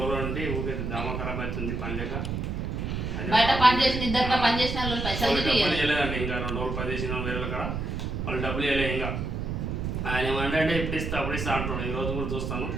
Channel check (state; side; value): noise; right; rumble, 3 dB below the sound